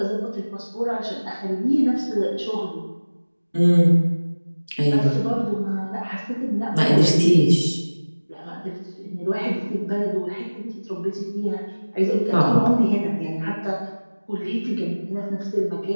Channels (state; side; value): inverted; both; correlation -1.00